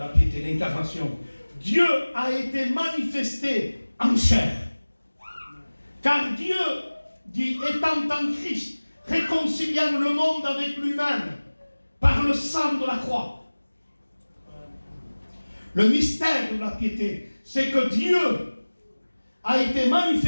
piété, l'incarnation. Dieu a été manifesté en chair. Car Dieu, dit, étant en Christ, réconciliant le monde avec lui-même par le sang de la croix. Le mystère de la piété, c'est que Dieu a été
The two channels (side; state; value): both; inverted; correlation -1.00